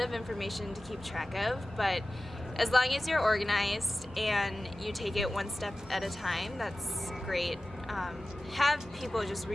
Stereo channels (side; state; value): both; normal; correlation 0.95